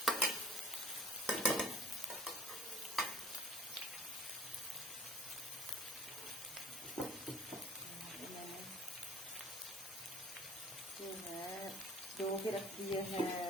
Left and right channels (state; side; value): normal; both; correlation 0.49